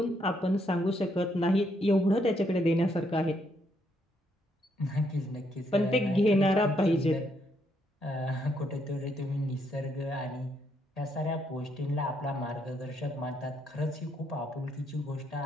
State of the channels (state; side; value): normal; both; correlation 0.74